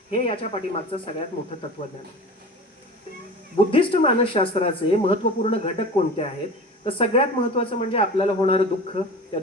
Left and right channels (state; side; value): normal; both; correlation 0.35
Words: हे याच्या पाठीमागचं सगळ्यात मोठं तत्वज्ञान. बुद्धिस्ट मानसशास्त्राचे महत्त्वपूर्ण घटक कोणते आहेत तर सगळ्यात महत्त्वाचं म्हणजे आपल्याला होणारं दुःख, त्या